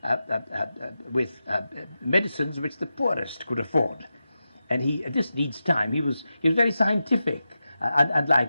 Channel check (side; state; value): both; inverted; correlation -0.91